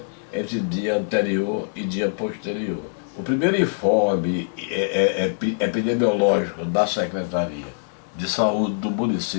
entre dia anterior e dia posterior. O primeiro informe epidemiológico da Secretaria de Saúde do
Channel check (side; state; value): right; silent; 60 dB below the other